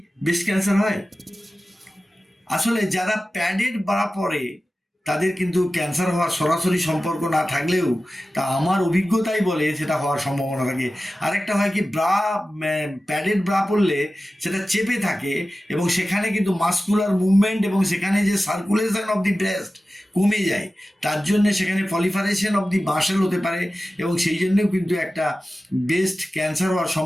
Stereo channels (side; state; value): both; normal; correlation 0.95